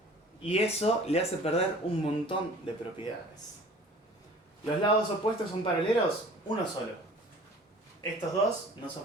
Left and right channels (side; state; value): both; normal; correlation 0.47